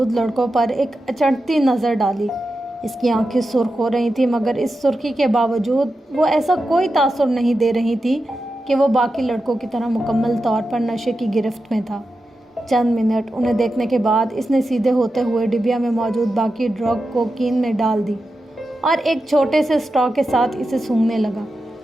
لڑکوں پر ایک اچنبھتی نظر ڈالی۔ اس کی آنکھیں سرخ ہو رہی تھیں، مگر اس سرخی کے باوجود وہ ایسا کوئی تاثر نہیں دے رہی تھی کہ وہ باقی لڑکوں کی طرح مکمل طور پر نشے کی گرفت میں تھا۔ چند منٹ انہیں دیکھنے کے بعد اس نے سیدھے ہوتے ہوئے ڈبیا میں موجود باقی ڈرگ کو کین میں ڈال دی اور ایک چھوٹے سے اسٹرا کے ساتھ اسے سونگھنے لگا۔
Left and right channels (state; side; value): normal; both; correlation 0.90